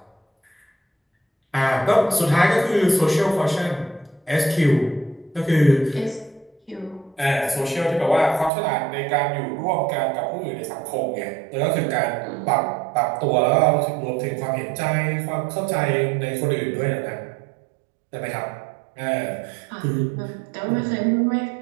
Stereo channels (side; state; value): left; drops out; at 8.5 s